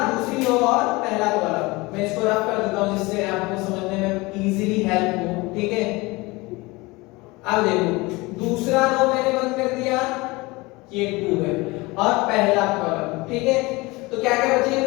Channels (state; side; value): quieter; right; 23.1 dB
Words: दूसरी रो और पहला कॉलम। मैं इसको रफ कर देता हूं जिससे आपको समझने में इजीली हेल्प हो, ठीक है। अब देखो दूसरा रो मैंने बंद कर दिया, ये 2 है और पहला कॉलम, ठीक है। तो क्या क्या बचे